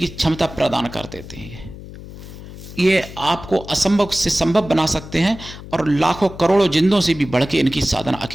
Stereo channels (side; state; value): left; noise; hum, 14 dB below the sound